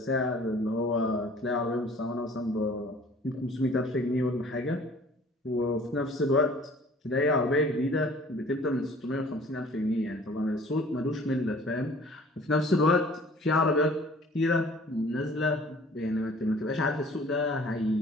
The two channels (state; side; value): normal; both; correlation 0.51